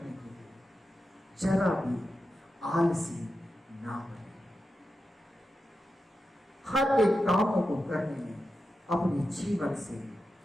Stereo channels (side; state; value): both; normal; correlation 0.90